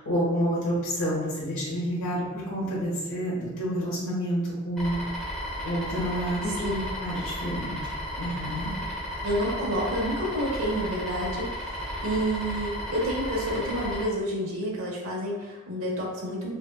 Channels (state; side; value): normal; both; correlation 0.36